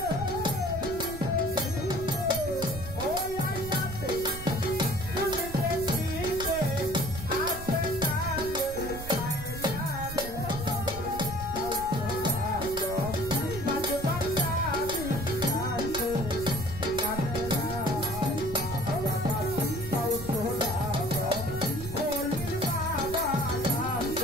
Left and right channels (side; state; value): right; noise; rumble, 11 dB below the sound